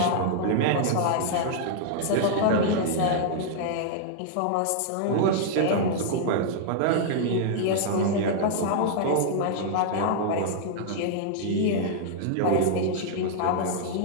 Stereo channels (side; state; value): both; different; correlation -0.01